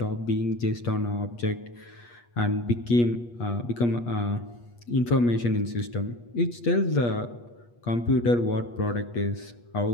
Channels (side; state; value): right; late; 8.4 ms